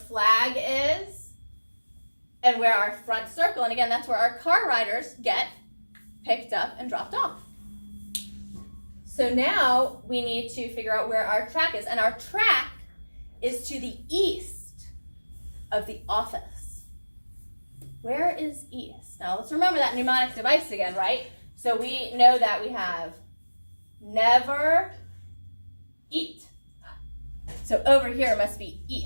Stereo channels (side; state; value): both; inverted; correlation -1.00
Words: is and where our front circle, and again, that's where our car riders get picked up and dropped off. So now we need to figure out where our track is, and our track is to the east of the office. Where is east? Now let's remember that mnemonic device again, right? So we know that we have never eat. So over here must be